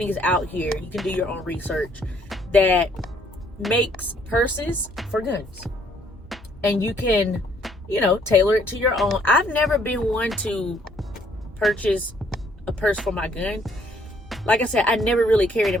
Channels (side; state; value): both; normal; correlation 0.65